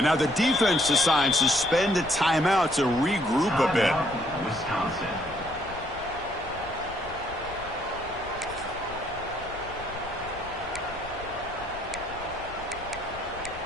now the defense decides to spend a timeout to regroup a bit. Wisconsin.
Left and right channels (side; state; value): left; noise; rumble, 17 dB below the sound